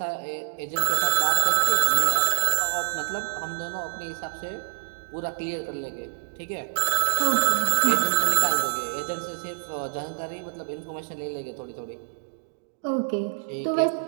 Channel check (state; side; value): silent; left; digital silence